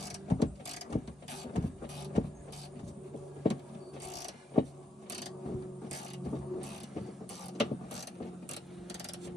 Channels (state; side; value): normal; both; correlation 0.79